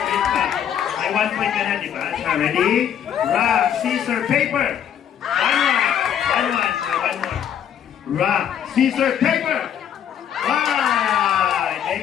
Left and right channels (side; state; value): right; quieter; 9.3 dB